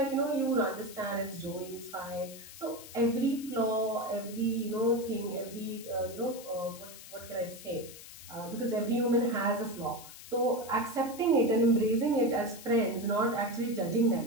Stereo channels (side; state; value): left; noise; hiss, 16 dB below the sound